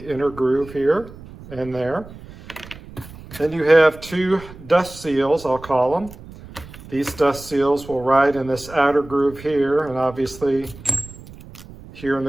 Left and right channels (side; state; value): right; noise; rumble, 17 dB below the sound